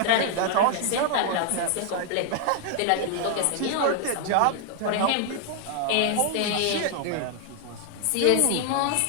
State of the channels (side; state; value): both; different; correlation 0.00